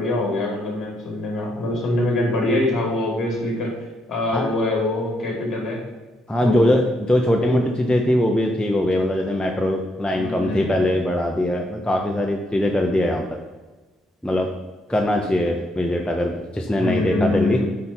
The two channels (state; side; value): normal; both; correlation 0.77